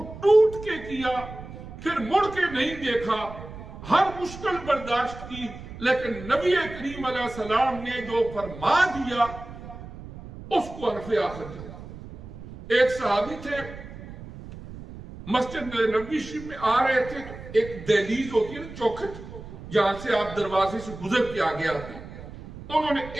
ٹوٹ کے کیا، پھر مڑ کے نہیں دیکھا، ہر مشکل برداشت کی، لیکن نبی کریم علیہ السلام نے جو فرما دیا اس کو حرف آخر دیا۔ ایک صحابی تھے، مسجد نبوی شریف میں آ رہے تھے تو ایک دہلیز ہوتی ہے نا، چوکھٹ، جہاں سے آپ دروازے سے گزر کے آگے آتے ہیں، انہوں نے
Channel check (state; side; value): noise; right; rumble, 14 dB below the sound